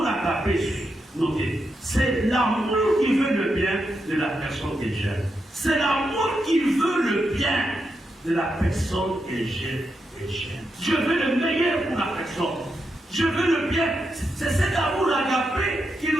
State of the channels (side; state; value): both; normal; correlation 0.85